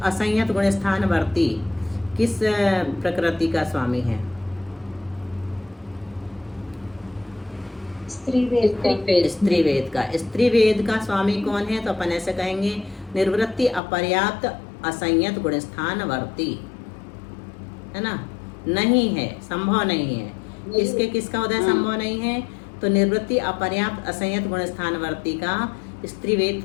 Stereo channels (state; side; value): drops out; right; at 13.8 s